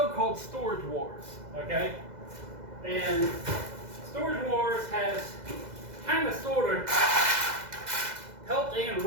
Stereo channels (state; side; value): late; left; 2.0 ms